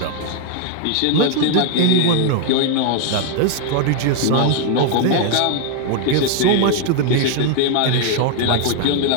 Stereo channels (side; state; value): both; different; correlation 0.00